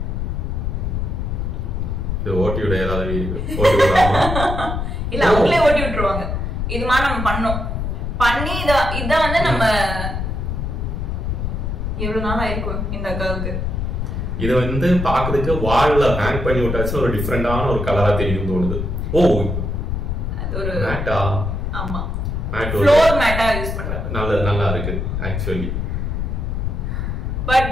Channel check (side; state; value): left; noise; rumble, 2 dB below the sound